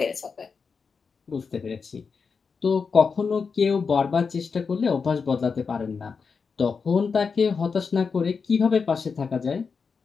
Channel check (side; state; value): right; quieter; 5.3 dB